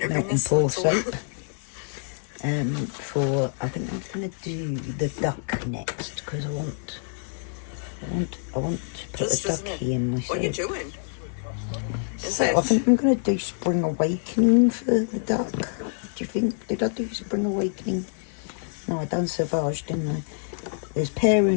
melt and pour soap. I think I'm gonna do the duck next because I want to put a ducky in my soap. What are you doing? So I think I'm going to do Spring Awakening for the duck. Do you think? Did I do Spring Awakening? No, I done Sauvage, didn't I? There's Pear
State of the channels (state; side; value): silent; right; 61 dB below the other